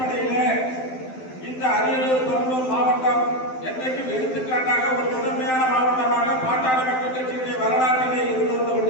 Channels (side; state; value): right; late; 12 ms